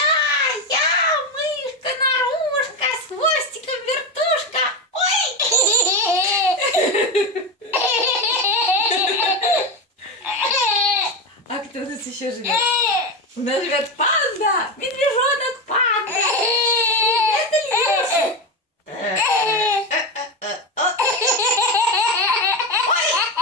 Я, мышка, нарушка, с хвостиком вертушка. Ой! А кто у нас еще живет? У нас живет панда, медвежонок панда. Это Илюша.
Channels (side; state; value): both; normal; correlation 0.16